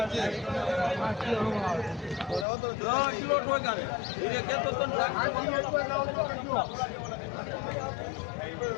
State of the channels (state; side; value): drops out; right; at 2.5 s